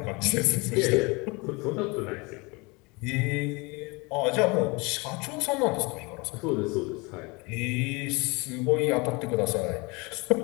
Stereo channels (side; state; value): right; quieter; 27.3 dB